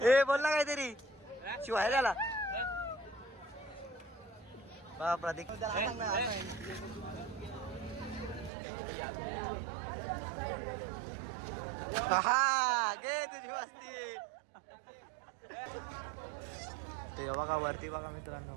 ए बोल ना काहीतरी शिवाय त्याला. बघा प्रतीक. हा गे तुझी मस्ती. ते बघा वरती बघा मित्रांनो,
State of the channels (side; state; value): left; drops out; at 8.5 s